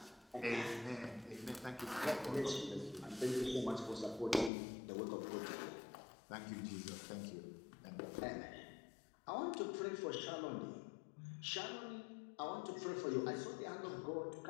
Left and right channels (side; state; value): right; drops out; at 4.5 s